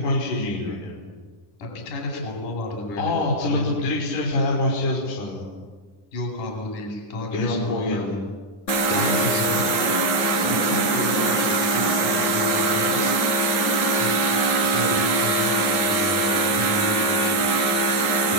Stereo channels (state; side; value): late; right; 10 ms